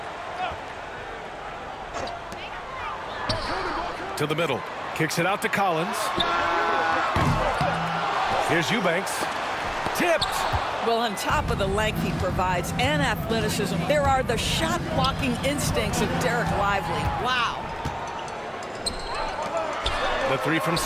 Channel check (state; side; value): identical; both; correlation 1.00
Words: To the middle. Kicks it out to Collins. Here's Eubanks. Tipped. Well, on top of the length he provides and athleticism, there are the shot-blocking instincts of Derek Lively. Wow. The three from